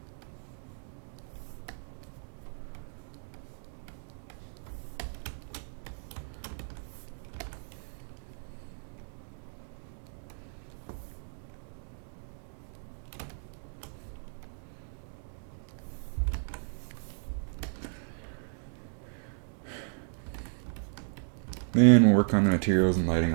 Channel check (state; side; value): silent; left; digital silence